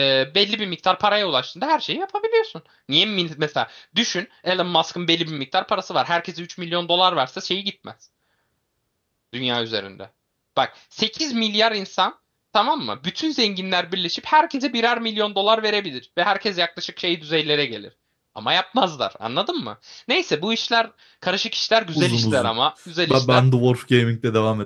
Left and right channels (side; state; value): both; identical; correlation 1.00